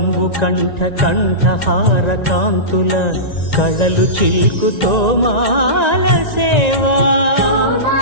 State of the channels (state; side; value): late; right; 1.9 ms